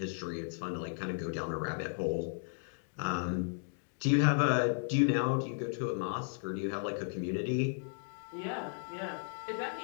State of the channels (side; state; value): right; silent; digital silence